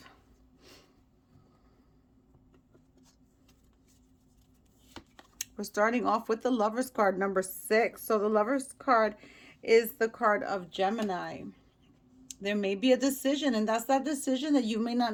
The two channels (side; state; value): both; identical; correlation 1.00